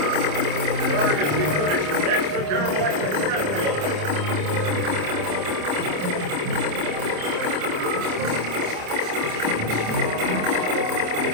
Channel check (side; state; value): left; late; 27 ms